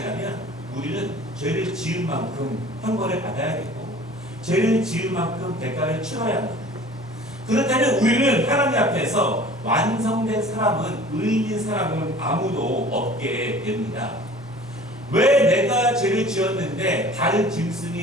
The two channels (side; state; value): both; normal; correlation 0.46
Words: 우리는 죄를 지은 만큼 형벌을 받아야겠고 죄를 지은 만큼 대가를 치러야 합니다. 그렇다면 우리는 하나님 앞에서 완성된 사람은 의인인 사람은 아무도 없게 됩니다. 왜 내가 죄를 지었는데 다른